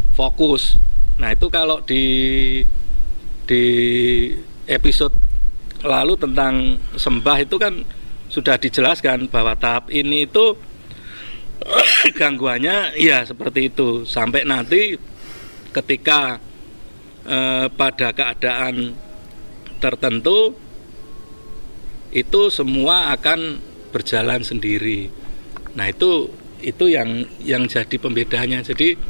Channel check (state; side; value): inverted; both; correlation -1.00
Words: fokus. Nah, itu kalau di episode lalu tentang sembah itu kan sudah dijelaskan bahwa tahap ini itu gangguannya ya seperti itu, sampai nanti ketika pada keadaan tertentu itu semua akan berjalan sendiri. Nah, itu yang jadi pembedanya.